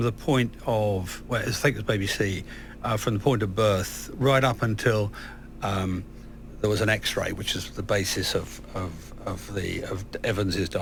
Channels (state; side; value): identical; both; correlation 1.00